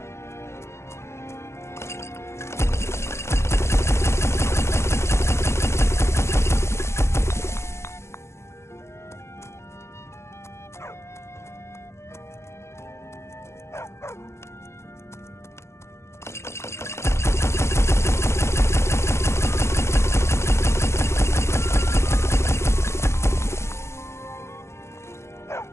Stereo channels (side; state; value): right; late; 0.13 ms